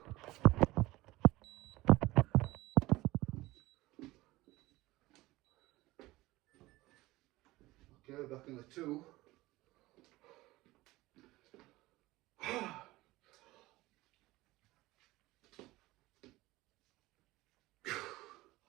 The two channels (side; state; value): left; quieter; 19.1 dB